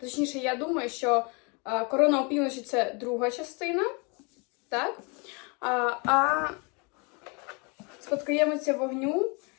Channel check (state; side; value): quieter; right; 31.8 dB